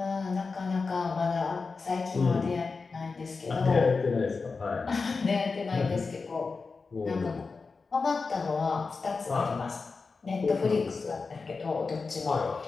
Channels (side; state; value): right; quieter; 4.4 dB